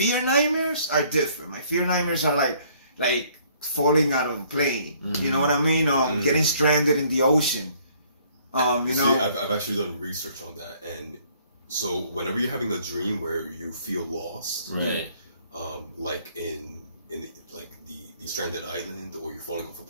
nightmares are different. My fear nightmares are like falling out of a plane. You know what I mean? Getting stranded in the ocean. You know, I've actually done research on that, and so whenever you're having a dream where you feel lost, right? Like in the stranded island, or you're falling off a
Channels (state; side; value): inverted; both; correlation -0.61